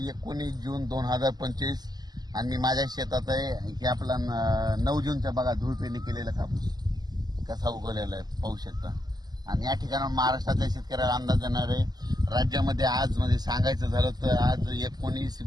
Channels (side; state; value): left; late; 0.20 ms